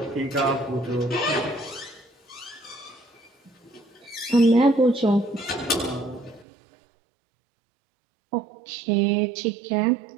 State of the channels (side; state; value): left; drops out; at 6.5 s